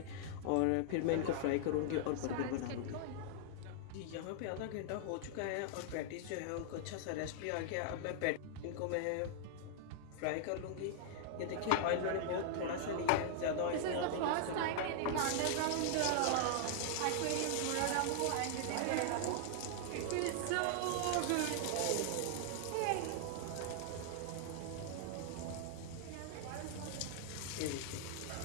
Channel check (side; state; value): both; different; correlation -0.01